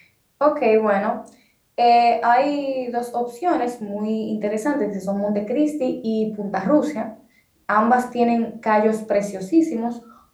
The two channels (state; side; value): identical; both; correlation 1.00